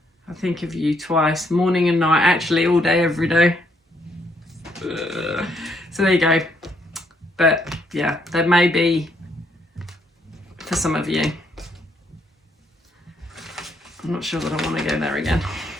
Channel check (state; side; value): normal; both; correlation 0.72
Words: I think of you twice, morning and night, actually all day, every day. So there you go. But yeah, there may be for some of you. I'm not sure that I want to go there again.